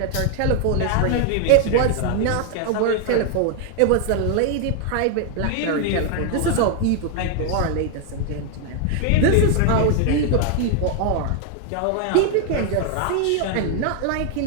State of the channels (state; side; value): different; both; correlation 0.00